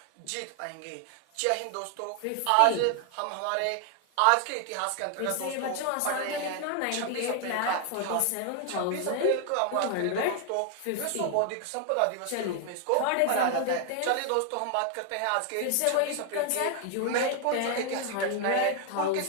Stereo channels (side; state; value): both; different; correlation 0.00